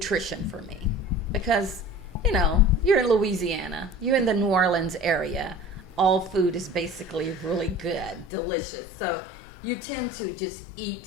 for me, because, you're in Louisiana, you're in the New Orleans area. All food is basically really good, delicious. So you tend to just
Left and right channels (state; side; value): drops out; right; at 8.2 s